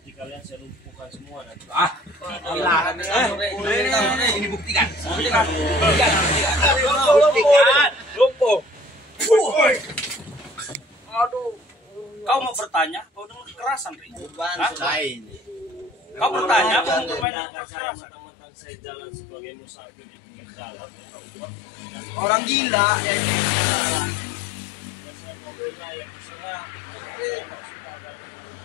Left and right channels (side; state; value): right; drops out; at 17.2 s